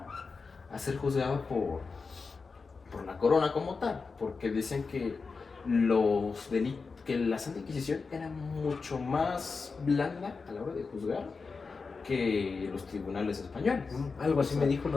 a ser juzgado por la corona como tal, porque decían que que la Santa Inquisición era mucho más blanda a la hora de juzgar que los tribunales españoles. Algo así me dijo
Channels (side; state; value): right; quieter; 4.6 dB